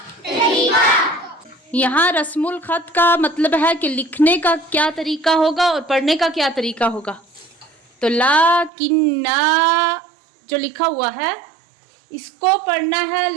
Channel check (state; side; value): drops out; left; at 8.7 s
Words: तरीका। यहाँ रस्मुल खत का मतलब है कि लिखने का क्या तरीका होगा और पढ़ने का क्या तरीका होगा। तो लाकिन्ना जो लिखा हुआ है इसको पढ़ना है